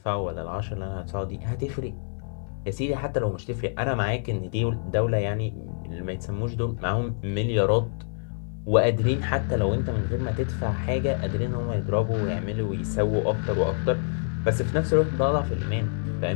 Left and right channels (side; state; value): right; silent; digital silence